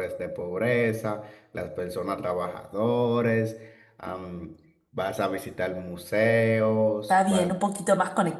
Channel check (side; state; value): both; identical; correlation 1.00